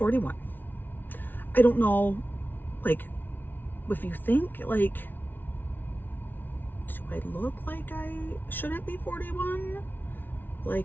I don't know, like, if you think, like, do I look like I shouldn't be 41?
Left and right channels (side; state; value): right; late; 0.091 ms